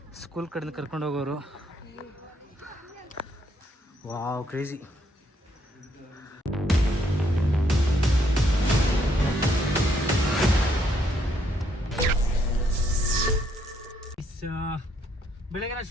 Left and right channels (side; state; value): both; normal; correlation 0.71